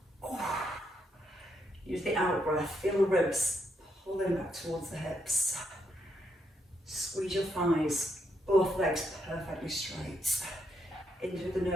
Use the out breath, feel the ribs pulling back towards the hips. Squeeze your thighs, both legs perfectly straight. In through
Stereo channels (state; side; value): normal; both; correlation 0.78